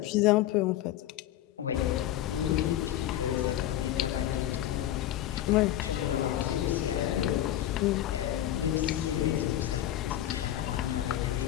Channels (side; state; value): right; quieter; 12.7 dB